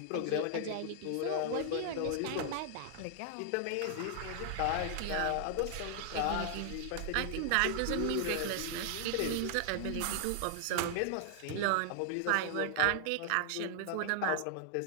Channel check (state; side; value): different; both; correlation 0.00